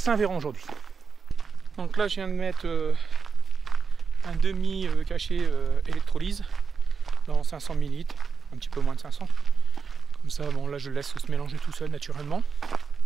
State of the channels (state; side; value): quieter; left; 5.6 dB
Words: aujourd'hui. Donc là je viens de mettre un demi cachet électrolyse dans 500 ml, un petit peu moins de 500. Comme ça, bon là je le laisse se mélanger tout seul naturellement.